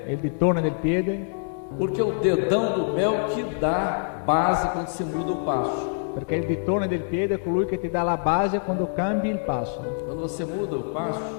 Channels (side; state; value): right; silent; digital silence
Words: E il ditone del piede, porque é o dedão do pé é o que dá base quando se muda o passo. perché il ditone del piede è colui che ti dà la base quando cambi il passo. Quando você muda o passo,